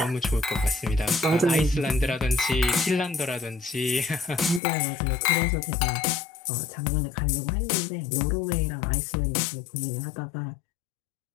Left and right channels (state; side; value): drops out; right; at 4.6 s